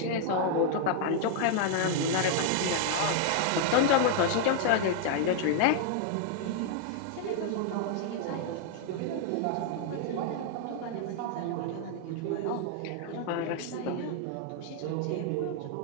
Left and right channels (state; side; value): different; both; correlation 0.00